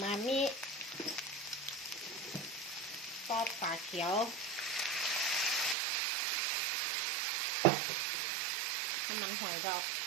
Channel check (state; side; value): drops out; left; at 5.8 s